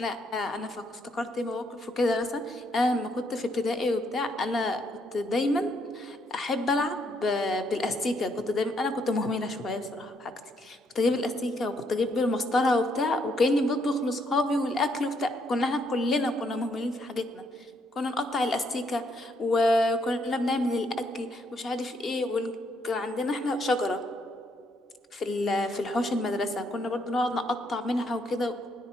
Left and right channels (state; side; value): normal; both; correlation 0.72